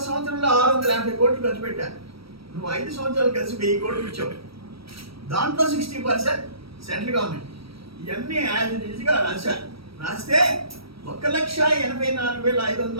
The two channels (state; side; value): late; left; 0.75 ms